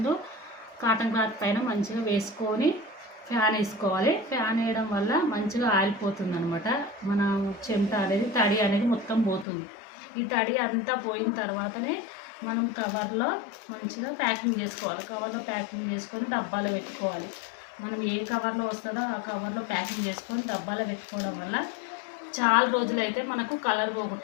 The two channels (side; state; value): right; drops out; at 9.5 s